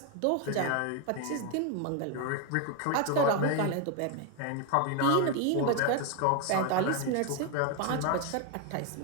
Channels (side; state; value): both; different; correlation 0.01